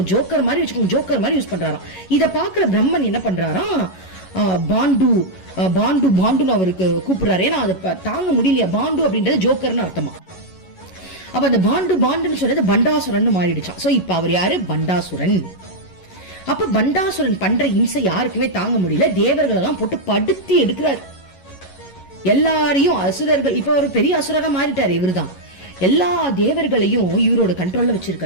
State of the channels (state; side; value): late; right; 11 ms